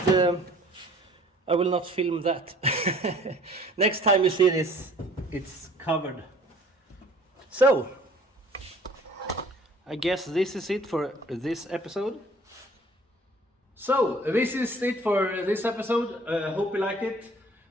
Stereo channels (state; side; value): normal; both; correlation 0.52